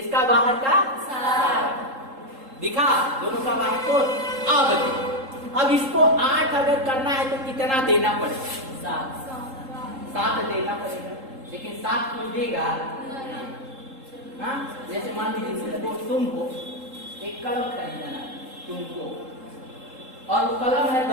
बाहर का 7 दिखा, दोनों का बाह्य कोश। अब इसको 8 अगर करना है तो कितना देना पड़ेगा? 7 देना पड़ेगा, लेकिन 7 कोई देगा? हाँ, जैसे मान लीजिए तुमको एक कलम खरीदना तुमको, और वो कलम है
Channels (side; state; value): left; late; 3.8 ms